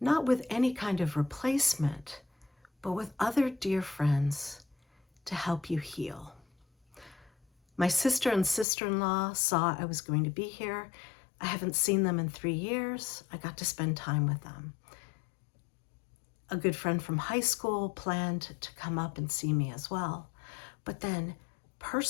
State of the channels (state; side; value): drops out; right; at 8.7 s